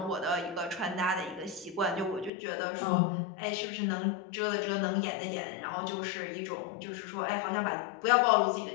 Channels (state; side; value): drops out; right; at 2.3 s